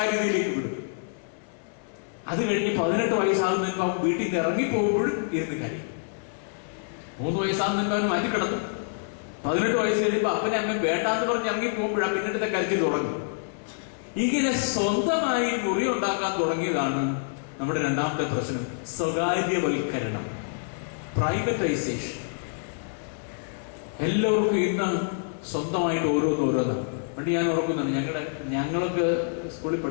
വിടും. അത് കഴിഞ്ഞ് 18 വയസ്സാകുന്നതിന് മുമ്പ് അവൻ വീട്ടിൽ നിന്ന് ഇറങ്ങിപ്പോകുമ്പോഴും ഇരുന്ന് കാര്യം. 3 വയസ്സാകുന്നതിന് മുമ്പ് അവൻ മാറ്റി കിടത്തും. 18 വയസ്സ് കഴിയുമ്പോൾ അപ്പനെ അമ്മ വേണ്ടാന്ന് പറഞ്ഞ് ഇറങ്ങിപ്പോകുമ്പോഴാണ് പിന്നീട് കരുത്തിൽ തുടങ്ങും. ഇങ്ങനെ സ്വന്തമായി മുറി ഉണ്ടാക്കാൻ തുടങ്ങിയതാണ് നമ്മുടെ രണ്ടാമത്തെ പ്രശ്നം, സ്വകാര്യവൽക്കരണം, പ്രൈവറ്റൈസേഷൻ. എല്ലാവർക്കും ഇന്ന് സ്വന്തമായിട്ട് ഓരോന്നാണ്. പണ്ട് ഞാൻ ഓർക്കുന്നുണ്ട്, ഞങ്ങളൊക്കെ സ്കൂളിൽ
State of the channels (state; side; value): silent; right; digital silence